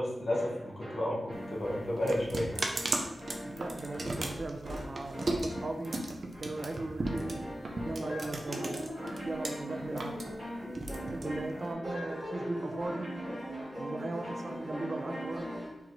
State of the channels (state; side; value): normal; both; correlation 0.93